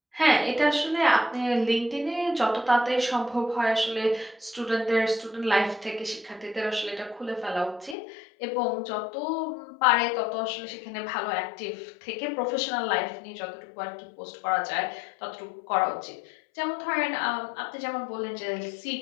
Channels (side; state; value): right; drops out; at 8.0 s